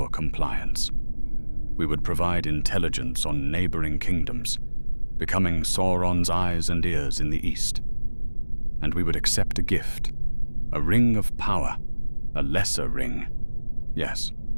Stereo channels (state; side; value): inverted; both; correlation -1.00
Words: compliance. We would provide intelligence on neighboring kingdoms, becoming Sauron's eyes and ears in the east. And we would accept a gift, a ring of power, a lesser ring, yes,